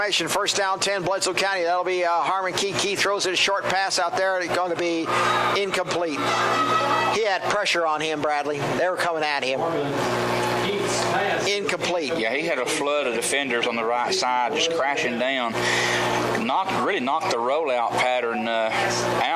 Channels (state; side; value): identical; both; correlation 1.00